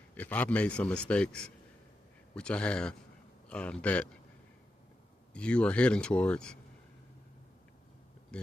if I've made some mistakes, which I have, that you are heading towards,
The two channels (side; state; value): both; normal; correlation 0.88